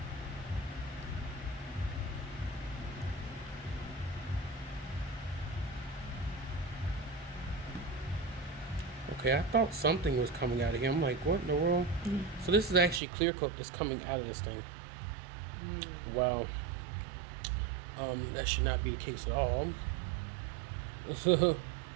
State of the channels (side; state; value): left; drops out; at 13.0 s